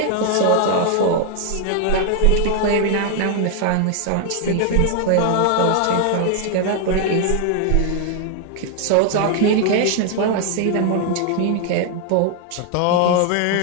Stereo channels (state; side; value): different; both; correlation 0.00